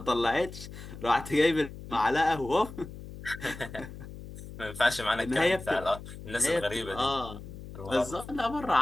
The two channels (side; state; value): left; noise; hum, 13 dB below the sound